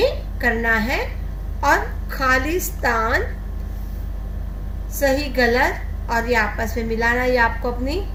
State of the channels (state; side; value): identical; both; correlation 1.00